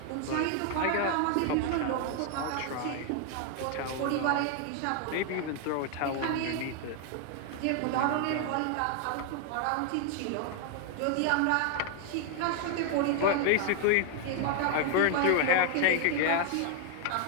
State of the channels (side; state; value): both; different; correlation 0.00